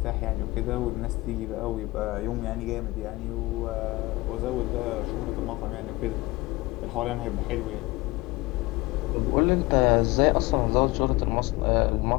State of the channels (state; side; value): quieter; right; 21.4 dB